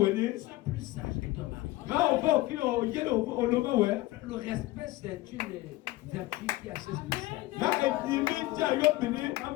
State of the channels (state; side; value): quieter; right; 18.1 dB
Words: Sois plus sage que ton mari. Le respect, c'est une vertu qui est assez spéciale.